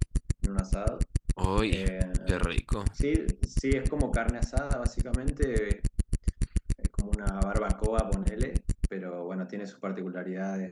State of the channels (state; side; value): identical; both; correlation 1.00